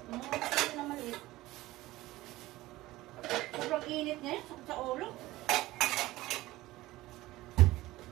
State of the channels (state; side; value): quieter; left; 17.8 dB